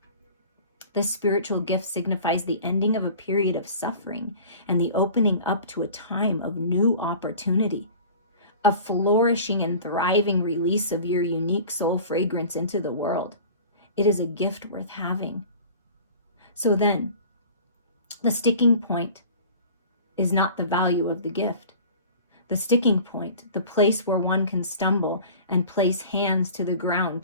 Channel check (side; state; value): both; inverted; correlation -0.42